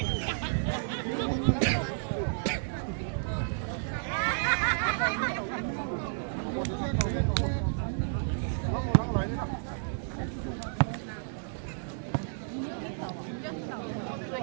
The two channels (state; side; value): silent; left; digital silence